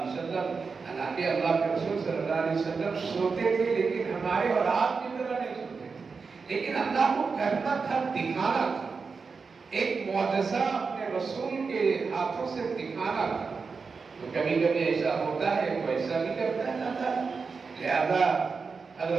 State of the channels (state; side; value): quieter; left; 4.9 dB